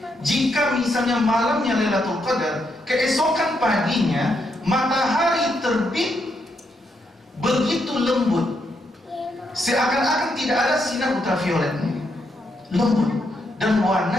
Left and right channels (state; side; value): normal; both; correlation 0.79